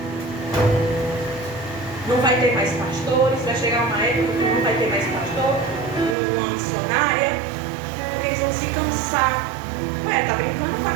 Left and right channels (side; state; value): left; drops out; at 6.2 s